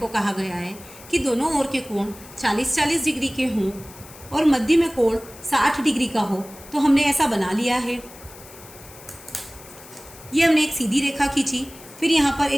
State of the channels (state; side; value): noise; left; hiss, 19 dB below the sound